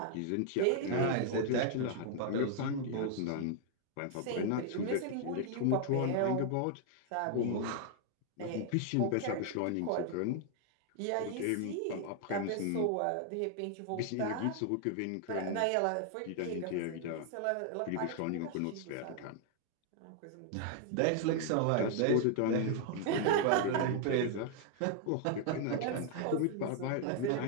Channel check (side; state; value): both; different; correlation 0.00